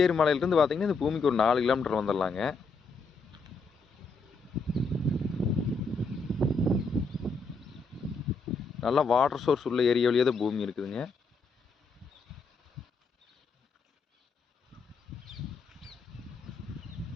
மலையிலிருந்து பார்த்தீங்கன்னா இந்த பூமிக்கு ஒரு 4 கிலோமீட்டர் வந்துடலாங்க. நல்லா வாட்டர் சோர்ஸ் உள்ள ஏரியாவிலேயே தான் பூமி இருக்குதுங்க.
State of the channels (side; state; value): right; quieter; 4.1 dB